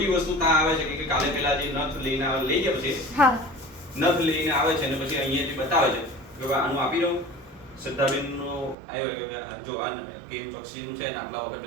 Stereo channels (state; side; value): drops out; left; at 8.8 s